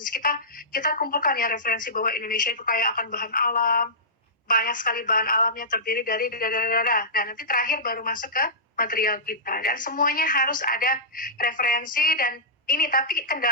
kita kumpulkan ya referensi bahwa Indonesia itu kaya akan bahan alam, banyak sekali bahan alamnya, terdiri dari Nah, nanti terakhir baru masuk ke material kita, dan semuanya harus ada referensi. Dan ini tapi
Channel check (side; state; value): both; normal; correlation -0.18